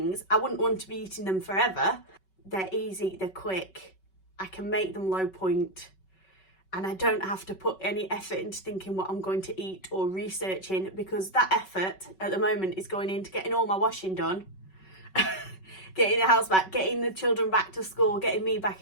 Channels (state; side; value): late; right; 5.3 ms